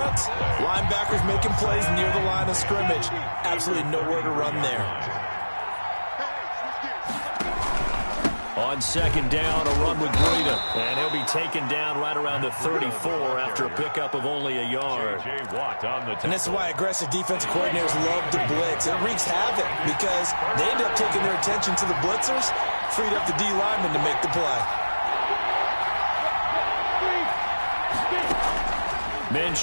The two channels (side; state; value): both; inverted; correlation -1.00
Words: linebackers making plays near the line of scrimmage. Absolutely nowhere to run there. On second down, a run with Breida. And he'll be taken down right around the 34 after a pickup of only a yard. And this is why aggressive defensive coordinators love to blitz. It wreaks havoc because they end up taking their attention to the blitzers, freed up the D lineman to make the play.